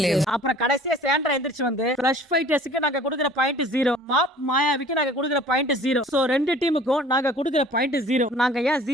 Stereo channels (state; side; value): normal; both; correlation 0.49